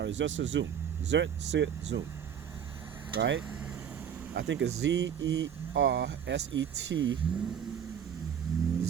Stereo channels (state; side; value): quieter; left; 8.5 dB